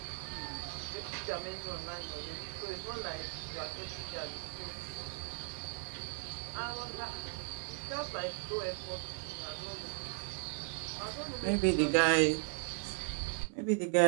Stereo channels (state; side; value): silent; left; 53 dB below the other